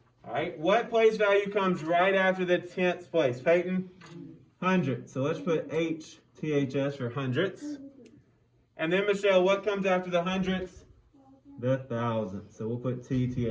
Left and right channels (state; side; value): identical; both; correlation 1.00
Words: All right. What place value comes right after the tenths place? Peyton? Hundredths. So let's put HTHS for hundredths. And then, Michelle, what comes after the hundredths? The thousandths. So we'll put